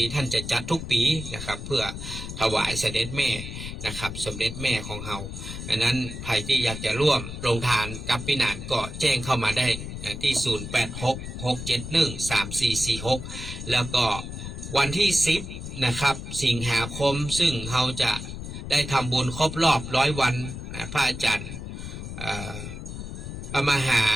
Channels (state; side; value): noise; left; rumble, 8 dB below the sound